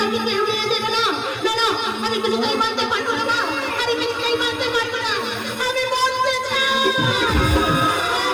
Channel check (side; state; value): both; identical; correlation 1.00